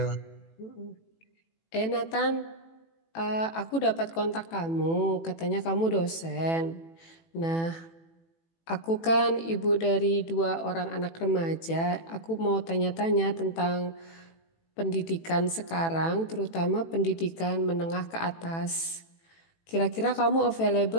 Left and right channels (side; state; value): right; late; 18 ms